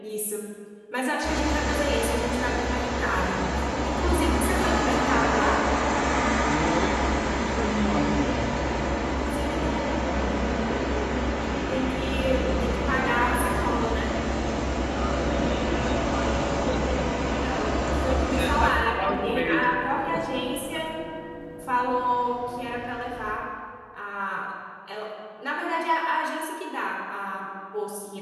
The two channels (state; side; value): identical; both; correlation 1.00